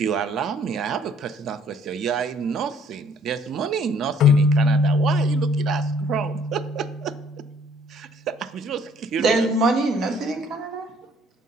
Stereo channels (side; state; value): both; normal; correlation 0.61